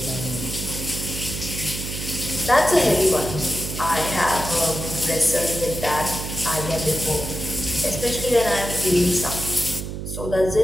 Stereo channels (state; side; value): noise; right; hum, 6 dB below the sound